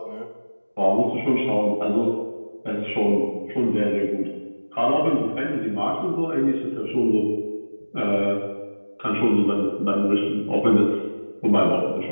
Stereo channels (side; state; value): both; inverted; correlation -1.00